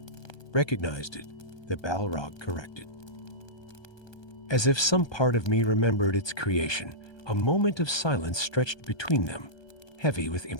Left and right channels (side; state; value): right; late; 1.2 ms